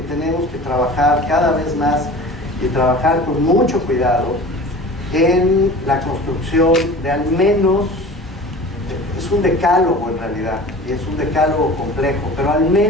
tenemos que trabajar cada vez más y trabajar con mucho cuidado en la construcción de al menos, es un decálogo en realidad, y es un decálogo complejo, pero al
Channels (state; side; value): normal; both; correlation 0.40